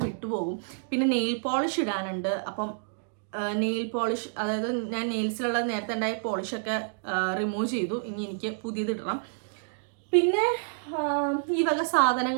വിട്ടുപോകും. പിന്നെ നെയിൽ പോളിഷ് ഇടാനുണ്ട്. അപ്പം നെയിൽ പോളിഷ്, അതായത് ഞാൻ നെയിൽസിലുള്ള നേരത്തെ ഉണ്ടായ പോളിഷൊക്കെ റിമൂവ് ചെയ്തു. ഇനി എനിക്ക് പുതിയത് ഇടണം. പിന്നെ ഈ വക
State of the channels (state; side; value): silent; left; digital silence